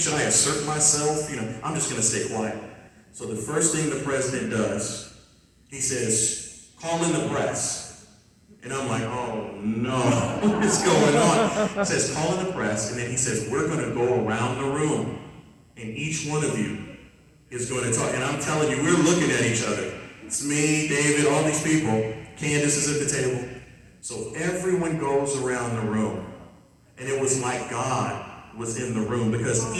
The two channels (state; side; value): identical; both; correlation 1.00